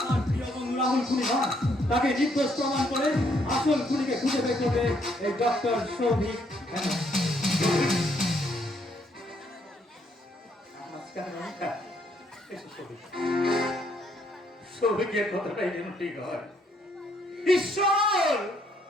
আমার প্রিয় বন্ধু রাহুল খুনি নয়, তাকে নির্দোষ প্রমাণ করে আসল খুনিকে খুঁজে বের করবে এই ডক্টর সৌভিক ব্যানার্জি। সৌভিকের কথাটাই যেন ঠিক হয়। ঈশ্বর,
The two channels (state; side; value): normal; both; correlation 0.70